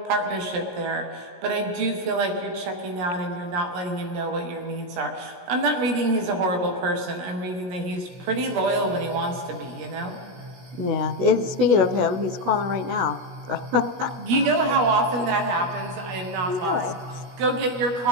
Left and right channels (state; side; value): late; left; 16 ms